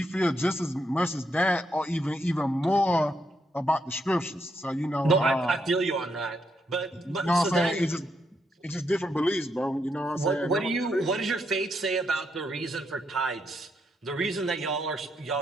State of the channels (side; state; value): both; normal; correlation 0.79